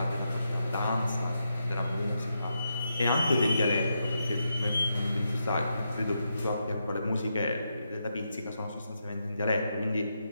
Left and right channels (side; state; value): both; inverted; correlation -0.84